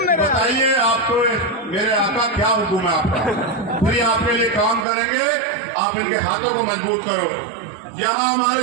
बताइए आपको मेरे आका क्या हुक्म है आपका, फिर आपके लिए काम करेंगे। आप इनके हाथों को मजबूत करो। यहाँ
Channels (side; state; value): left; drops out; at 4.9 s